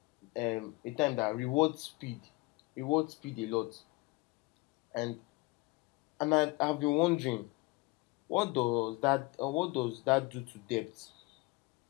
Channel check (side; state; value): right; quieter; 23.8 dB